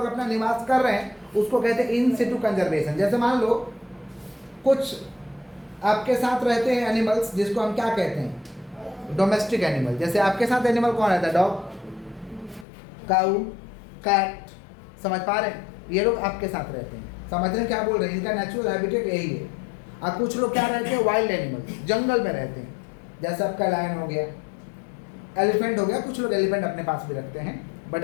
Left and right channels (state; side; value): drops out; right; at 12.7 s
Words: अपना निवास कर रहे हैं उसको कहते हैं इन सिटू कंजर्वेशन। जैसे मान लो कुछ आपके साथ रहते हैं एनिमल्स, जिसको हम क्या कहते हैं, डोमेस्टिक एनिमल। जैसे आपके साथ एनिमल कौन रहता है, डॉग, काऊ, कैट, समझ पा रहे हैं, ये लोग आपके साथ रहते हैं, समझ रहे हैं क्या बोल रहे हैं, इनका नेचुरल हैबिटेट यही है। और कुछ लोग क्या रहते हैं, वाइल्ड एनिमल, जंगल में रहते हैं, जैसे आपका लायन हो गया, एलिफेंट हो गया, कुछ लोग एलिफेंट अपने पास भी रखते हैं, बट